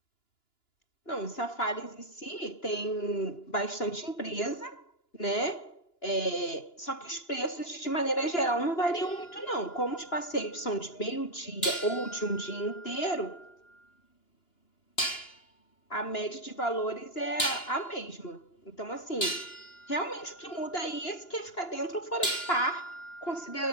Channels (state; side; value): late; right; 2.9 ms